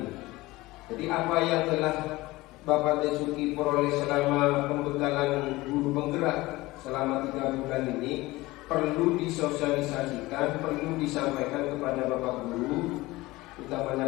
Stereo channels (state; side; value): quieter; right; 19.9 dB